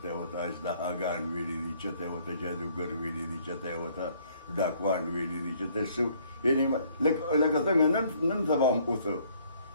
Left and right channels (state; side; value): inverted; both; correlation -0.62